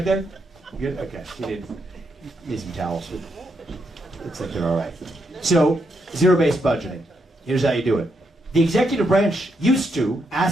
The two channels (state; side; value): normal; both; correlation 0.80